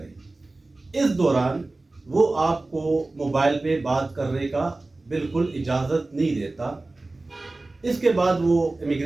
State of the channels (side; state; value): left; quieter; 3.1 dB